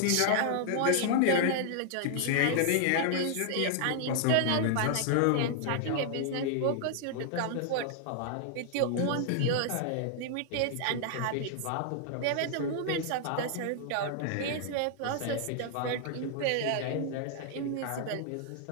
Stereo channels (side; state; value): both; different; correlation 0.00